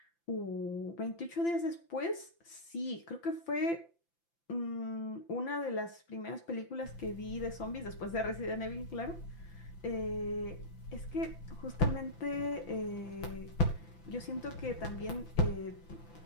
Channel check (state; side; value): late; right; 5.9 ms